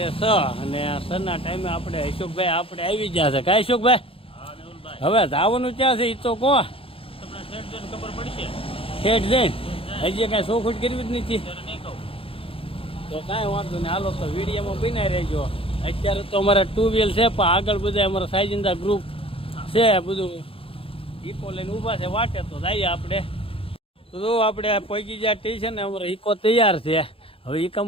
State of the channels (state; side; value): late; right; 0.27 ms